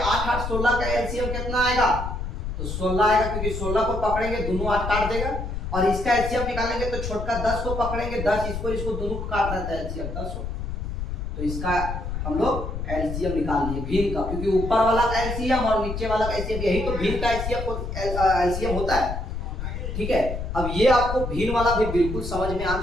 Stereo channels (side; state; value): left; noise; rumble, 5 dB below the sound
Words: 8 16 का एलसीएम कितना आएगा, तो 16 आएगा, क्योंकि 16 को पकड़ेंगे दोनों 8 काट देगा। और इसका एलसीएम निकालेंगे तो छोटका 10 को पकड़ेंगे, 10 इसको दोनों को काट रहता है एलसीएम 10 हो। तो इसका हम लोग एलसीएम निकाल लिए भीम का, क्योंकि ऊपर वाला का एलसीएम और नीचे वाला का एलसीएम, यही तो भीम का एलसीएम होता है। ठीक है, अब ये आपको भीम वाला भी बिल्कुल समझ में आ